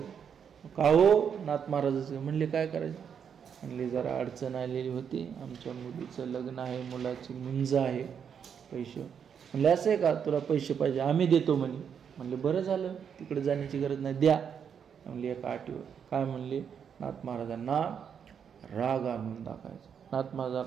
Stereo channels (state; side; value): quieter; left; 7.5 dB